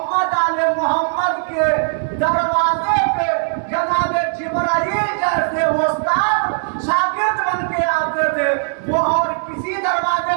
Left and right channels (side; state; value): left; silent; 63 dB below the other